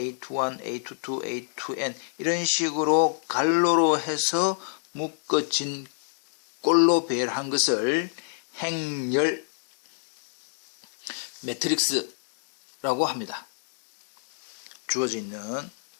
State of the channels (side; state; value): right; silent; digital silence